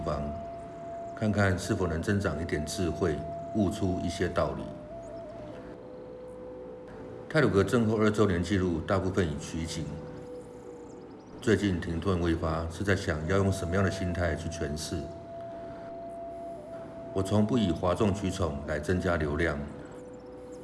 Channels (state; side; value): identical; both; correlation 1.00